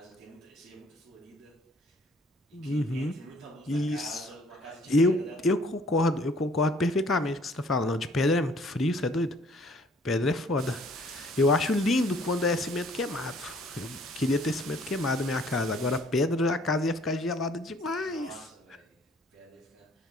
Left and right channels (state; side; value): normal; both; correlation 0.58